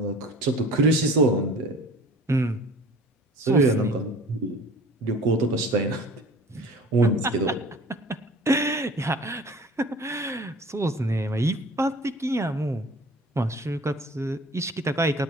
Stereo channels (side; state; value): both; normal; correlation 0.44